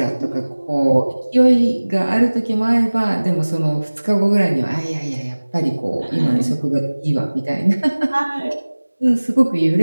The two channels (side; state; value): both; inverted; correlation -1.00